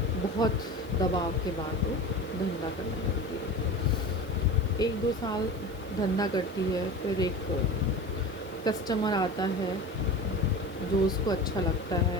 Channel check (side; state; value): right; noise; hiss, 24 dB below the sound